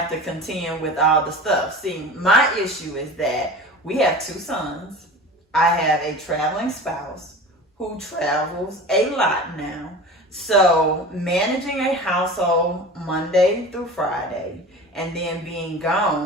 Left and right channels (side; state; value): both; normal; correlation 0.35